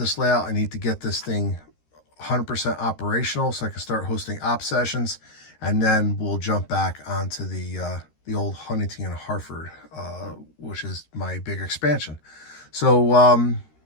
layout. I need to get this thing 100% operational so I can start hosting op sessions, and then we'll jump back onto the old Huntington and Hartford, which is my big expansion. So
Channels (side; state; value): right; late; 13 ms